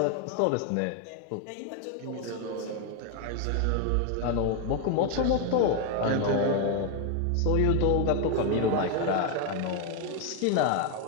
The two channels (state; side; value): different; both; correlation 0.01